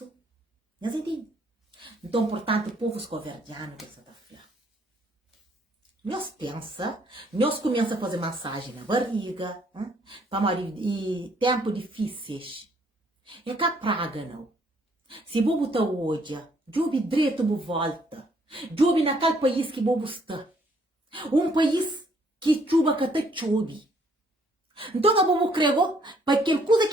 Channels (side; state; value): both; normal; correlation 0.66